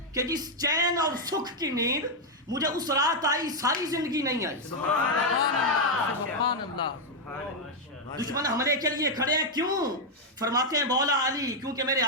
کہ جس چین اور سکھ کی نیند مجھے اس رات آئی ساری زندگی نہیں آئی۔ سبحان اللہ۔ دشمن حملے کے لیے کھڑے ہیں، کیوں؟ فرماتے ہیں مولا علی کیونکہ میرے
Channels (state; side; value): normal; both; correlation 0.00